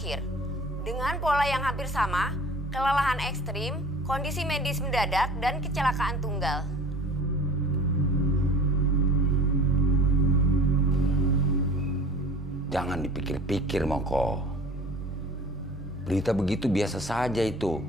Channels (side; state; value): both; normal; correlation 0.44